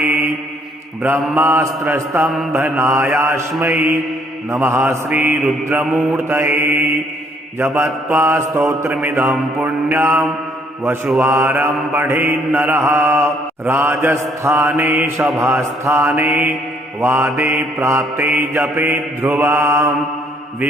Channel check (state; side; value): normal; both; correlation 0.65